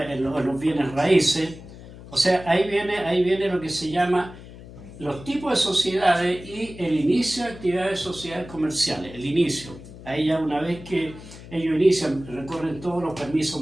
los bienes raíces. O sea, ahí viene lo que se llama los tipos de sociedades y el inicio de actividades de sociedades comerciales, el inicio. Ahí ya una vez que ellos inician, recorren todos los permisos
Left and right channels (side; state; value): left; noise; hum, 16 dB below the sound